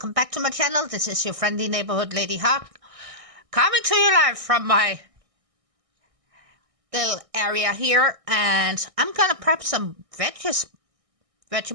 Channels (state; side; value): late; left; 1.6 ms